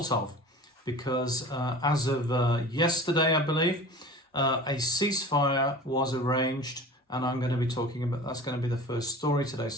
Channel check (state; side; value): normal; both; correlation 0.39